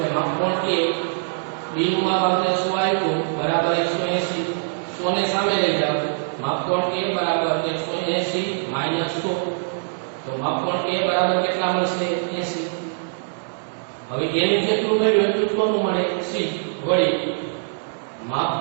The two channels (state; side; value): silent; left; digital silence